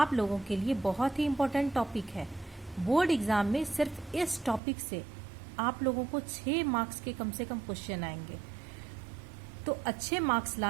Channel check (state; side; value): drops out; left; at 4.6 s